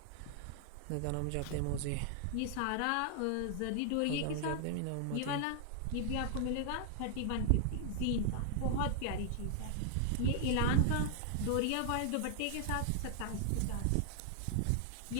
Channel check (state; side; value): different; both; correlation 0.00